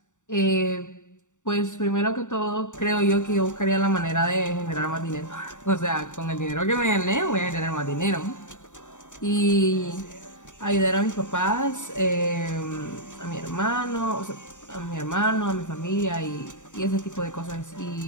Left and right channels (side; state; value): right; late; 0.86 ms